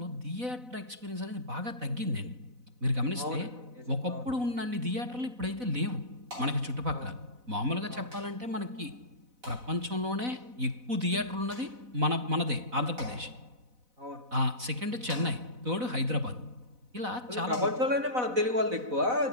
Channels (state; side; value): late; left; 4.0 ms